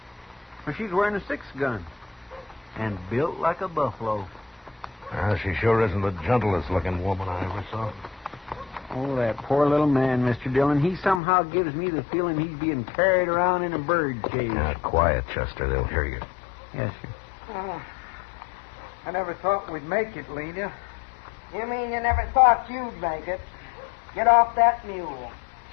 Well, she's wearing a 6-gun and built like a buffalo. She sure isn't the gentlest-looking woman I ever saw. Oh, that poor little man, Mr. Dillon. He somehow gives me the feeling he's being carried around in a bird cage. Quiet, Chester. They'll hear you. Yes, sir. I never thought we'd make it, Lena. You mean you never thought you'd make it? Get off that mule.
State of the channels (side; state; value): right; drops out; at 11.2 s